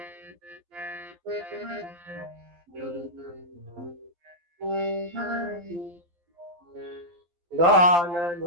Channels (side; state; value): left; late; 12 ms